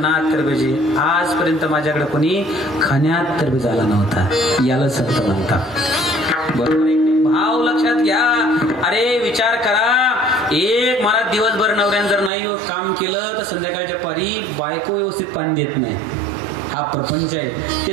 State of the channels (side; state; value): left; drops out; at 12.3 s